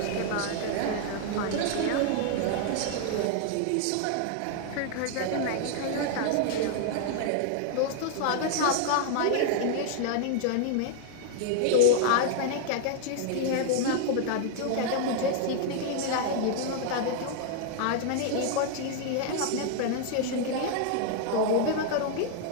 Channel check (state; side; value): different; both; correlation 0.00